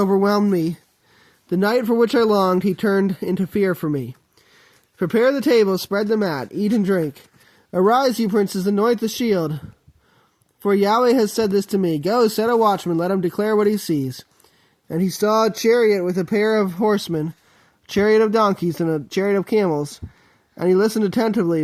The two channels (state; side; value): identical; both; correlation 1.00